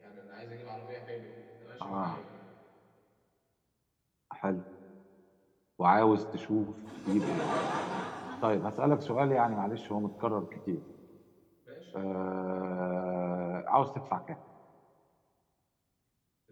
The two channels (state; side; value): identical; both; correlation 1.00